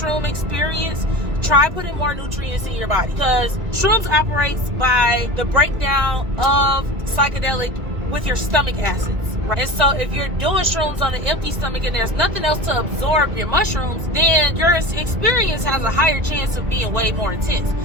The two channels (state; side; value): late; left; 1.9 ms